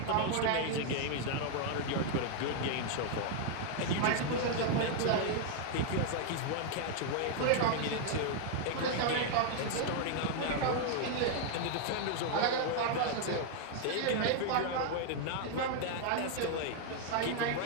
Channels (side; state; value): both; different; correlation 0.00